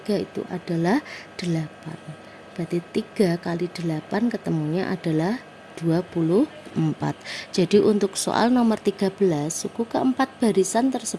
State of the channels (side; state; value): both; identical; correlation 1.00